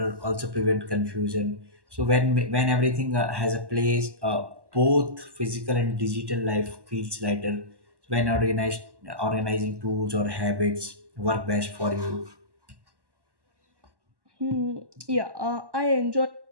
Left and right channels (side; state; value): left; late; 1.1 ms